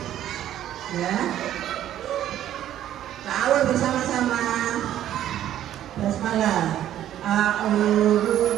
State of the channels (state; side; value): quieter; left; 11.8 dB